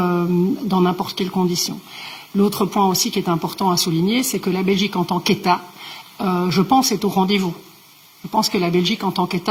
n'importe quelle condition. L'autre point aussi qui est important à souligner, c'est que la Belgique en tant qu'État, je pense, est au rendez-vous. Je pense que la Belgique en tant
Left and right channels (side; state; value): both; identical; correlation 1.00